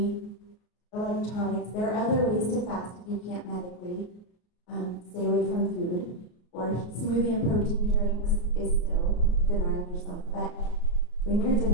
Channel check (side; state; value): right; late; 33 ms